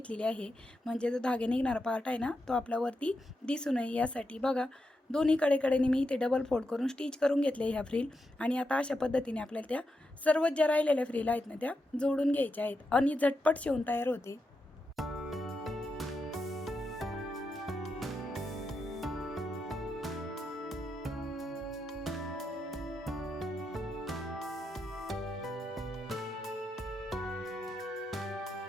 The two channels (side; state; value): both; normal; correlation 0.85